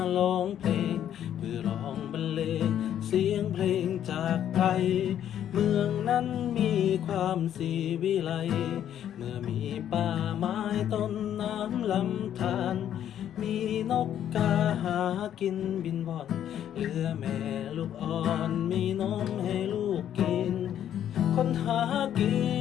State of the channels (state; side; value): quieter; right; 10.4 dB